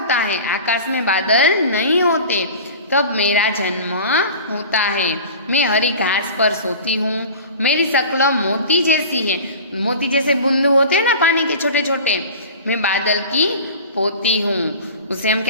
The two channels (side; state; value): both; inverted; correlation -0.37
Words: है, आकाश में बादल नहीं होते, तब मेरा जन्म होता है। मैं हरी घास पर सोती हूँ। मेरी शक्ल मोती जैसी है। मोती जैसे बूंद होते हैं ना पानी के छोटे छोटे। मैं बादल की पोती हूँ। उसे हम